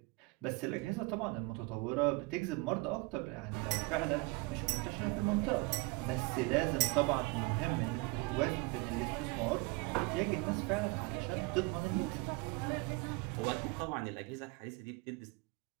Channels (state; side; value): quieter; left; 25.3 dB